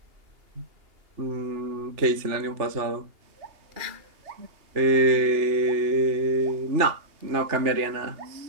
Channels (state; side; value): late; left; 2.8 ms